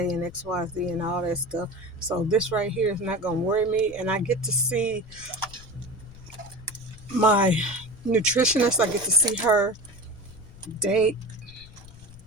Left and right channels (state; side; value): noise; left; rumble, 19 dB below the sound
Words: and XYZ and all that stuff. So this right here is not going to worry me. And I get to see my nutritionist. I get to see her day